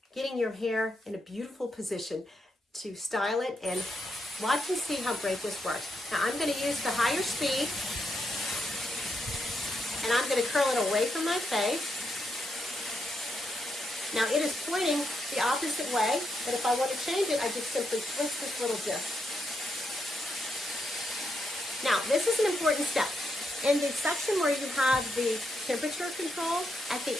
getting your hair in a beautiful position to style it, and watch and see how great this works. Now I'm going to use the higher speed, and I'm going to curl it away from my face. Now it is pointing the opposite way, but if I want to change it, I just simply twist this little disc. Now this is an important step. In the section where you have the temperature control, at the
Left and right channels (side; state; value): both; normal; correlation 0.82